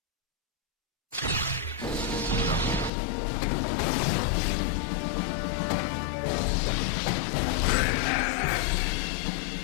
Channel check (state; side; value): drops out; right; at 2.9 s